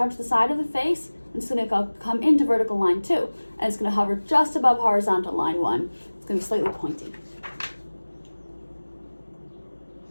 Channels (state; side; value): inverted; both; correlation -1.00